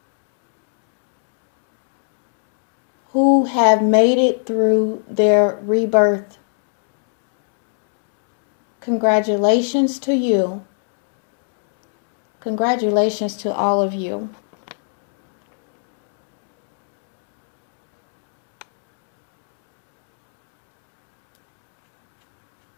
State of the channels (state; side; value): silent; right; digital silence